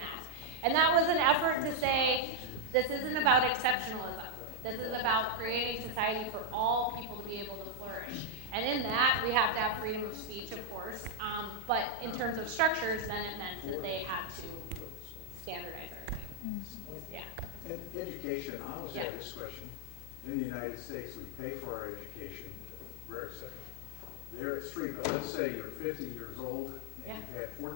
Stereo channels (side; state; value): left; noise; hum, 16 dB below the sound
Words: And that was an effort to say, this isn't about exceptionalism. This is about creating society for all people to be able to flourish. And in that, we have to have freedom of speech, of course. But in terms of structures, then it meant that they had to standardize everything. Yeah. And education, I always Yeah. have this question. In the United States, we pay for our education, rare exception. There it's free, but let's say you're 50 years old and you've had 4